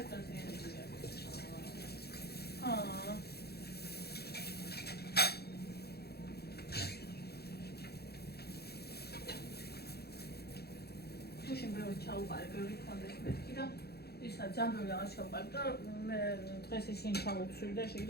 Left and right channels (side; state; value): right; late; 0.46 ms